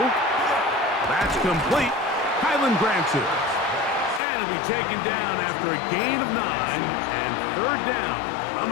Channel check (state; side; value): drops out; right; at 4.2 s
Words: That's complete. Highland grants it. And it'll be taken down after a gain of 9 and third down.